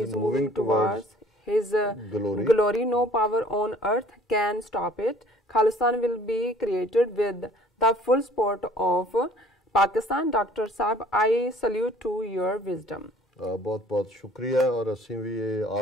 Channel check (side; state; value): both; normal; correlation 0.53